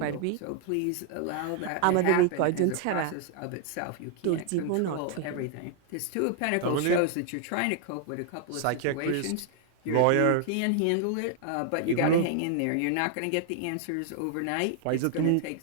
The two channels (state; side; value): different; both; correlation 0.00